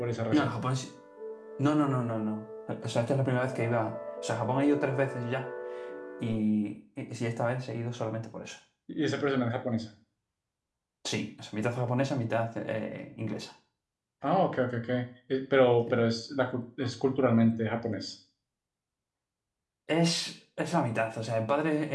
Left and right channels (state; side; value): identical; both; correlation 1.00